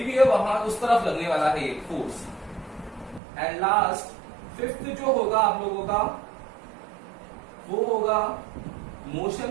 हुई है वहां उस तरफ लगने वाला है ये फोर्स। एंड लास्ट फिफ्थ जो होगा आप लोगों का वो होगा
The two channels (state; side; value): drops out; left; at 3.2 s